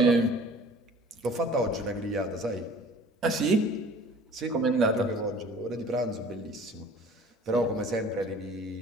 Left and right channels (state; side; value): normal; both; correlation 0.48